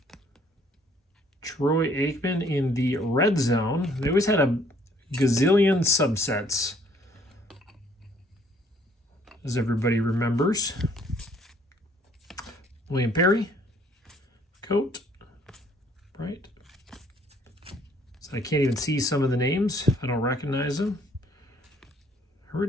Troy Aikman in the red zone. They always had a gazillion subsets, as everybody remembers. William Perry, Coat. Right. So I can't even see some of the names. I don't recognize them.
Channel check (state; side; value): normal; both; correlation 0.62